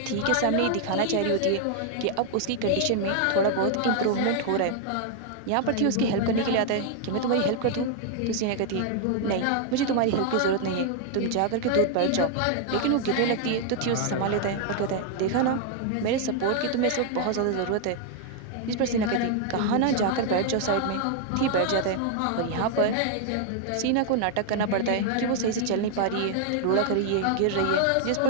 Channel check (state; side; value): different; both; correlation 0.00